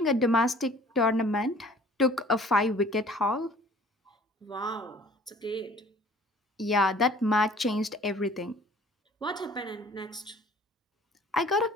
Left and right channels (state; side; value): normal; both; correlation 0.52